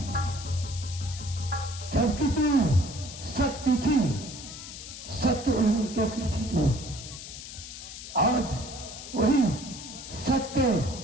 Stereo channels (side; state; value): left; noise; hiss, 11 dB below the sound